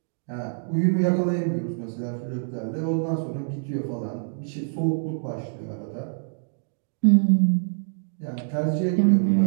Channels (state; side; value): silent; left; digital silence